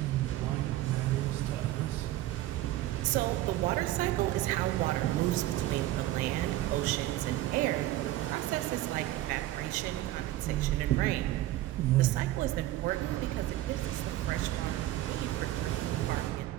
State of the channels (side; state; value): left; quieter; 15.3 dB